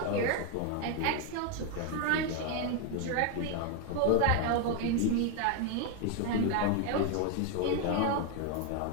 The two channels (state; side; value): different; both; correlation 0.01